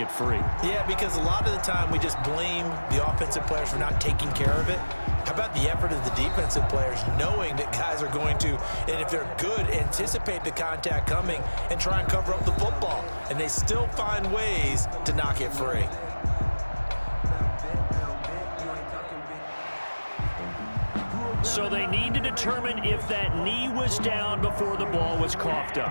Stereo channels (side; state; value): both; inverted; correlation -1.00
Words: free. Yeah, because a lot of the time we just blame the offensive players for not taking care of it. How about the effort of the defensive players, knowing that guys are going to, and if they're good, anticipate the contact coming and try and cover up the football. And they still find ways to knock it free. So they need to determine if that knee was down before the ball was coughed